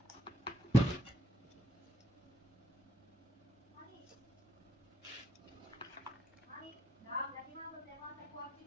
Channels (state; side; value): normal; both; correlation 0.75